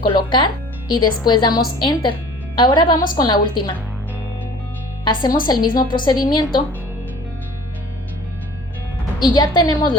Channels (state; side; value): normal; both; correlation 0.47